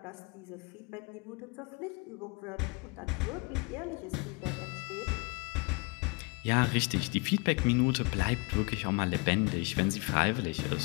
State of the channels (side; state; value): right; quieter; 29.4 dB